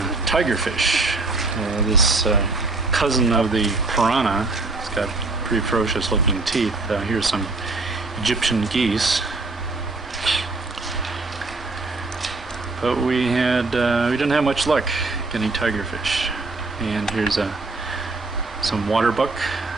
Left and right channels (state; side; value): quieter; left; 3.5 dB